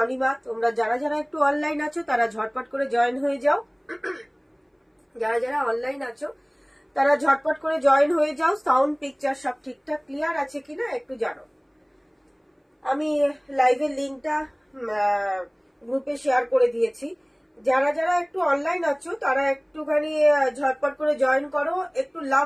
তোমরা যারা যারা একটু অনলাইন আছো তারা ঝটপট করে জয়েন হয়ে যাও। যারা যারা অনলাইন আছো তারা ঝটপট করে জয়েন হয়ে যাও। সাউন্ড পিকচার সব ঠিকঠাক ক্লিয়ার আছে কিনা একটু জানো। আমি লাইভের লিঙ্কটা গ্রুপে শেয়ার করে দিয়েছি। যারা যারা একটু অনলাইন আছো তারা একটুখানি ঝটপট করে জয়েন করো। একটু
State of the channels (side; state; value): both; identical; correlation 1.00